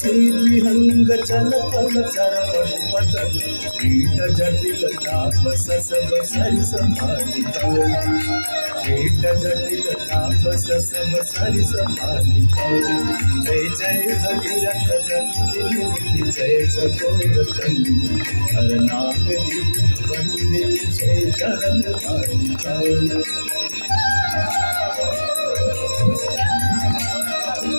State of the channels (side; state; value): both; inverted; correlation -1.00